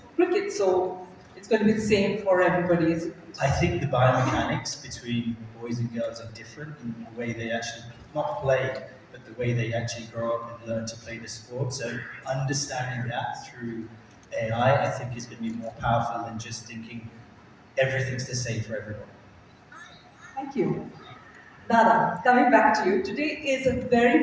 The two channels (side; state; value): both; identical; correlation 1.00